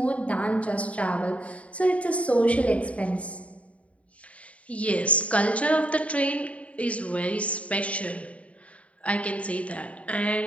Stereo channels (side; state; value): right; late; 0.065 ms